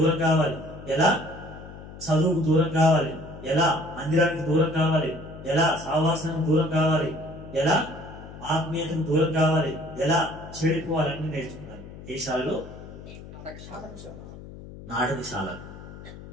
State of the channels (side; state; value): left; noise; hum, 15 dB below the sound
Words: కావాలి, ఎలా చదువుకు దూరం కావాలి, ఎలా మందిరానికి దూరం కావాలి, ఎలా సహవాసానికి దూరం కావాలి, ఎలా ఆత్మీయతకు దూరం కావాలి, ఎలా చెడిపోవాలి అన్ని నేర్చుకున్నారు. ఏ శాలలో? నాటకశాల.